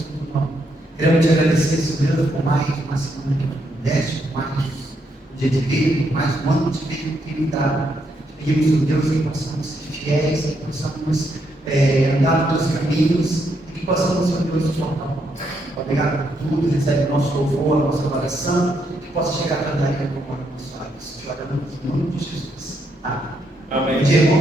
nome. Queremos te agradecer, Senhor Deus, por mais uma semana que nos deste, por mais um dia de vida, por mais um ano de vida que me dá. Pedimos, Senhor Deus, que possamos ser fiéis, que possamos andar nos teus caminhos e que possamos, Senhor Deus, nos tornar. Obrigado por tudo, recebe o nosso louvor, a nossa oração, que possa chegar a cantaria como abençoados. Te oramos em nome de Jesus. Amém. Bom dia,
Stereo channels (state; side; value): normal; both; correlation 0.77